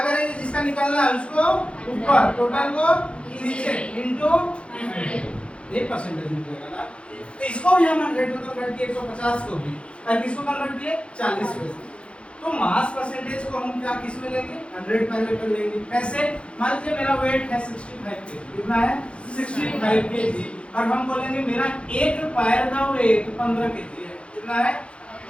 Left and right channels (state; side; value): late; right; 0.059 ms